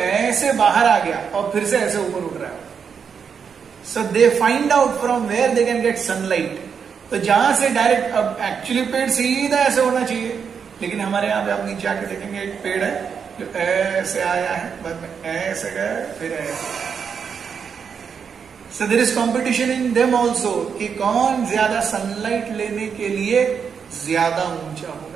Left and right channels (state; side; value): quieter; left; 6.6 dB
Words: बाहर आ गया और फिर से ऐसे ऊपर उठ रहा है। So they find out from where they can get sunlight. तो जहां से डायरेक्ट, अब एक्चुअली पेड़ सीधा ऐसे होना चाहिए, लेकिन हमारे यहाँ पे आप नीचे आके देखेंगे एक पेड़ है जो ऐसे आया है, बाद में ऐसे गया, फिर ऐसे। So there is competition in them also कि कौन ज्यादा सनलाइट लेने के लिए ज्यादा ऊंचा